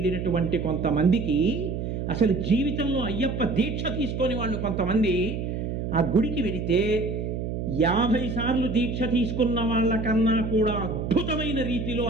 కొంతమందికి అసలు జీవితంలో అయ్యప్ప దీక్ష తీసుకొని వాళ్ళు కొంతమంది ఆ గుడికి వెళితే 50 సార్లు దీక్ష తీసుకున్న వాళ్ళకన్నా కూడా అద్భుతమైన రీతిలో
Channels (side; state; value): right; noise; hum, 4 dB below the sound